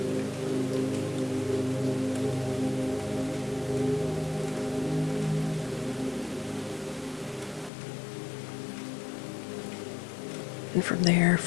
And from there,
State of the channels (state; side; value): drops out; right; at 7.7 s